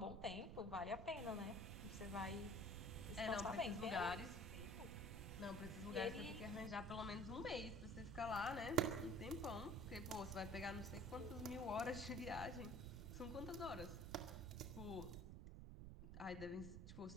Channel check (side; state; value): right; noise; rumble, 8 dB below the sound